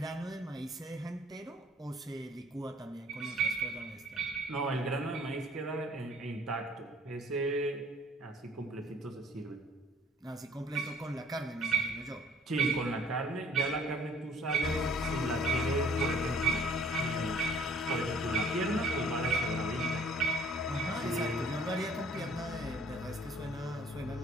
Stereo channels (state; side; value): normal; both; correlation 0.56